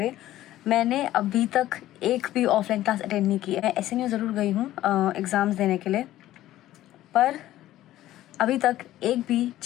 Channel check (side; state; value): right; quieter; 14.3 dB